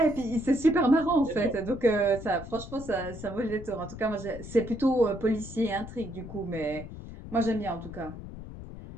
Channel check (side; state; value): left; noise; rumble, 12 dB below the sound